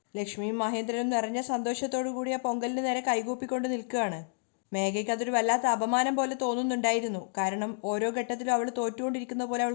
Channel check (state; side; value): silent; right; digital silence